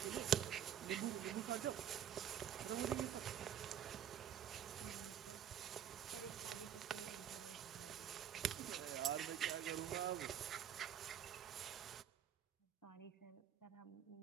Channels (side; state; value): left; quieter; 9.4 dB